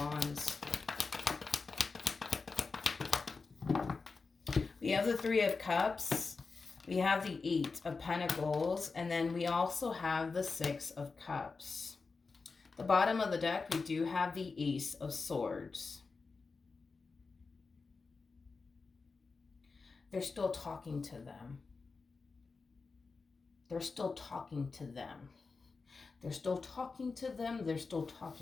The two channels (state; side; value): quieter; right; 4.4 dB